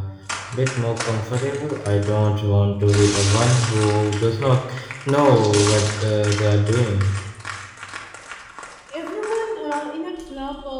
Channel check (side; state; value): both; identical; correlation 1.00